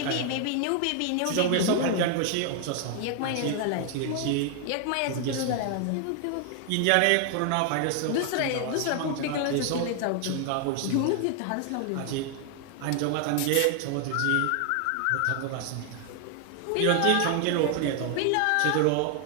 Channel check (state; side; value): different; both; correlation 0.00